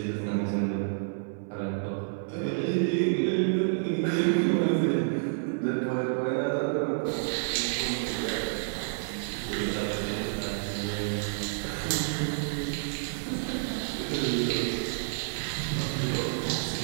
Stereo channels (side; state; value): left; silent; 58 dB below the other